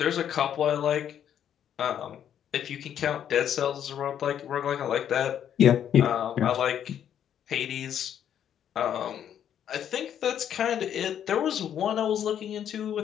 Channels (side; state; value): right; quieter; 9.6 dB